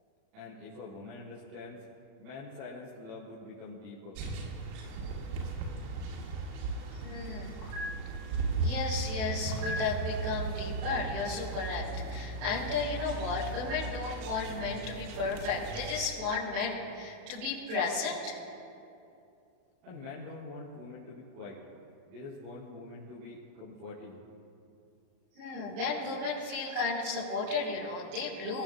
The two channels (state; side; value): late; left; 37 ms